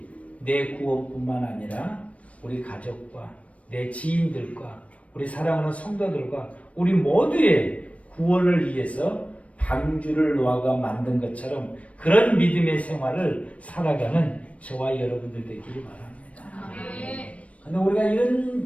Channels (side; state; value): right; late; 0.065 ms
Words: 내 구원뿐만 아니라 우리 가족과 내 지인들과 우리 사랑하는 성도들과 우리 모두의 구원을 위해서 방주를 노아가 만든 것처럼 그런 믿음의 생활을 살아가는 저와 여러분들 되기를 바랍니다. 그런데 우리가